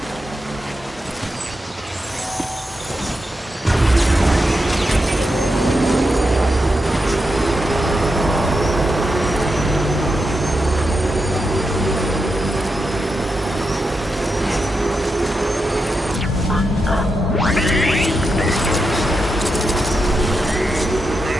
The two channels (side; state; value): both; normal; correlation 0.86